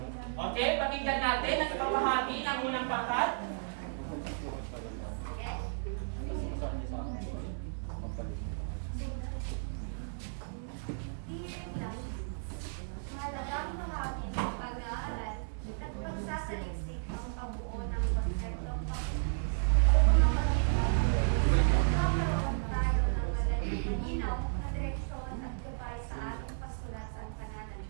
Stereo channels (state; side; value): silent; left; digital silence